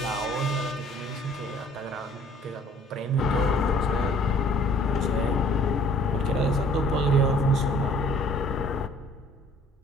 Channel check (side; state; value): both; normal; correlation 0.56